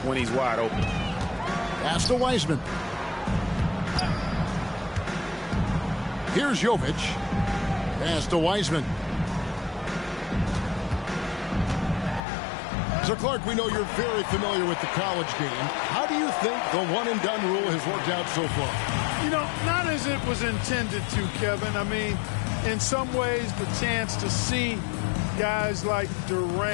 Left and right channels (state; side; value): drops out; right; at 12.2 s